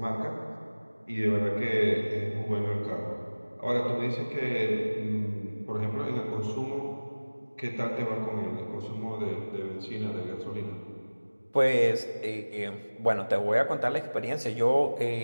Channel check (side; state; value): both; inverted; correlation -1.00